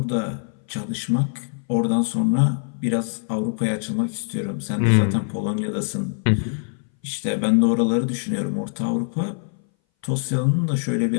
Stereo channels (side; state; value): right; silent; 60 dB below the other